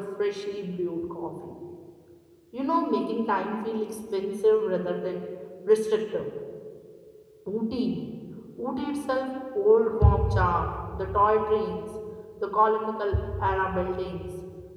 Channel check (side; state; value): both; identical; correlation 1.00